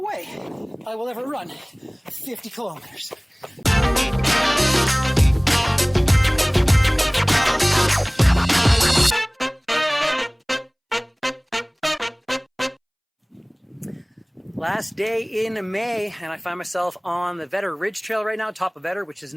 way I will ever run 50 kilometers. Last day in May, and I find myself on the Vedder Ridge Trail right now, top of Vedder, which is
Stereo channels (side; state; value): both; identical; correlation 1.00